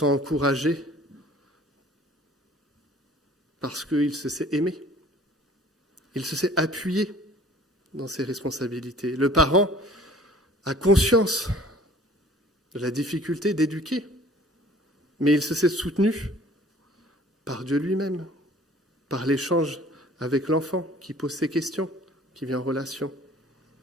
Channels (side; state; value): both; normal; correlation 0.51